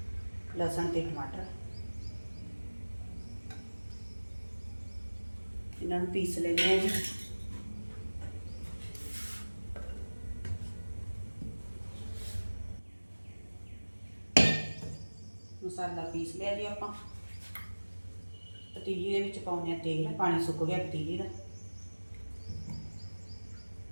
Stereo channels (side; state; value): both; inverted; correlation -1.00